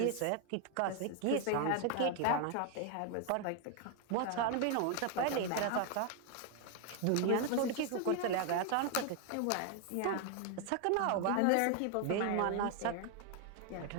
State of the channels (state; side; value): different; both; correlation 0.00